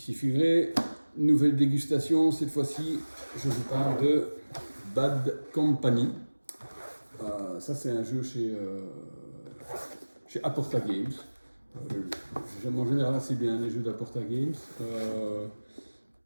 Figré, nouvelle dégustation. Cette fois-ci, je vous parle de Bad Company. Ça, c'est un jeu chez Aporta Games. J'aime en général assez bien les jeux d'Aporta Games.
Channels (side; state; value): both; inverted; correlation -1.00